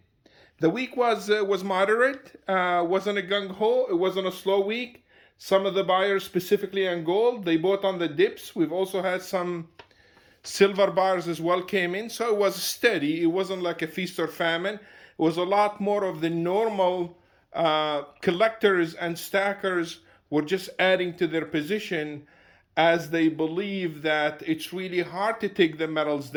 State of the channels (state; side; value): identical; both; correlation 1.00